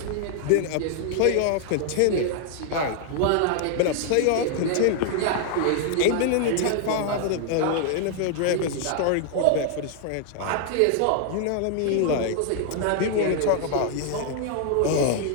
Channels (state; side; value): different; both; correlation 0.00